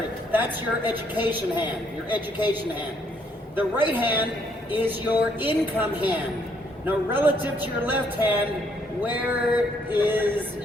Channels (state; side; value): normal; both; correlation 0.69